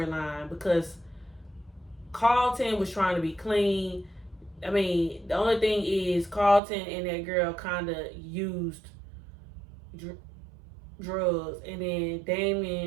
because Carlton was trying to be clean. I mean, the only thing is Carlton and that girl kind of used drugs, and then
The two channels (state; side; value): drops out; left; at 6.6 s